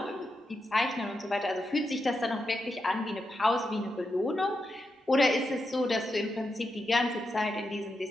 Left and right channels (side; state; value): both; normal; correlation 0.86